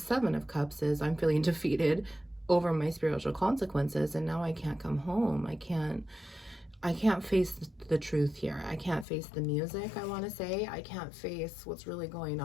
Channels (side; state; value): right; drops out; at 9.1 s